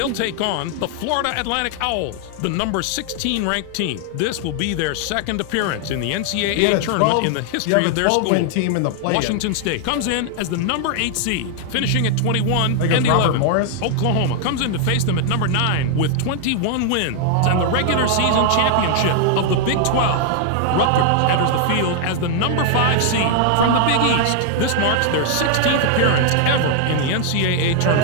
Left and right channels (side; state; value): both; different; correlation 0.00